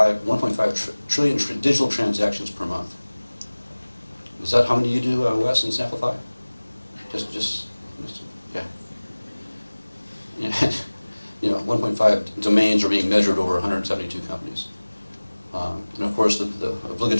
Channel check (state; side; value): inverted; both; correlation -1.00